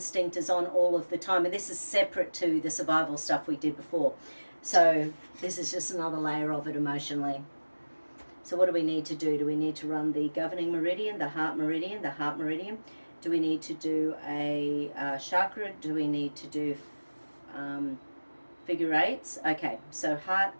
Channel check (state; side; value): inverted; both; correlation -1.00